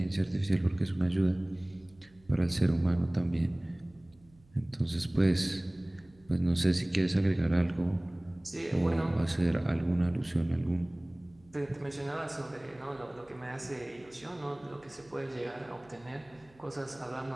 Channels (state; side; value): noise; right; hum, 29 dB below the sound